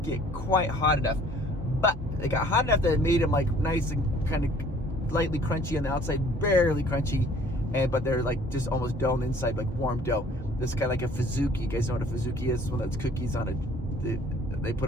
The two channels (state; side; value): normal; both; correlation 0.55